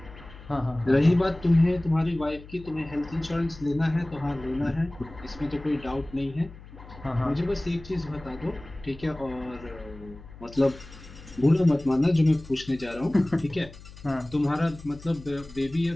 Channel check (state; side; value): noise; left; hum, 18 dB below the sound